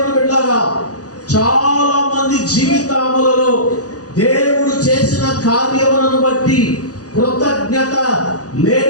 బిడ్డలారా, చాలా మంది జీవితములలో దేవుడు చేసిన కార్యములను బట్టి కృతజ్ఞత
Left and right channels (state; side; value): late; right; 0.67 ms